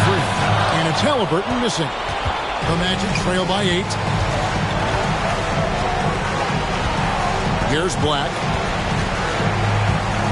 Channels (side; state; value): both; identical; correlation 1.00